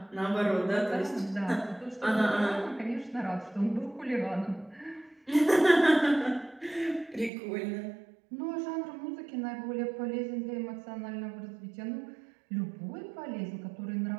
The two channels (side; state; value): left; drops out; at 7.3 s